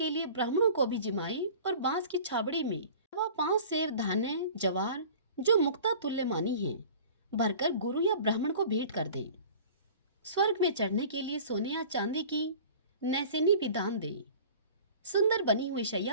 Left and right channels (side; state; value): both; inverted; correlation -0.43